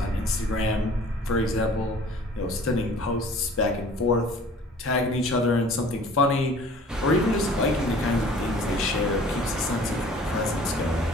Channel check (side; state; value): both; normal; correlation 0.49